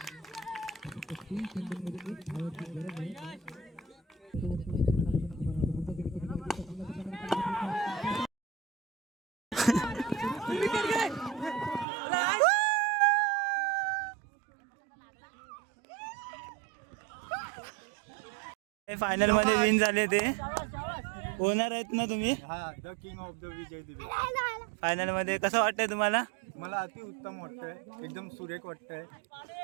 फायनल मध्ये विन झाले ते ओनर आहेत ना तुम्ही हा द किंग ऑफ द विजय दिवे. फायनल मध्ये कसं वाटतंय तुम्हाला? मला अति उत्तम वाटतंय, एकदम सुरेख वाटतंय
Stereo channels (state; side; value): drops out; left; at 11.9 s